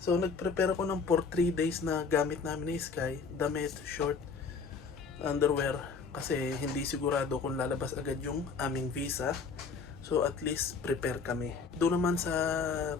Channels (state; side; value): quieter; right; 5.1 dB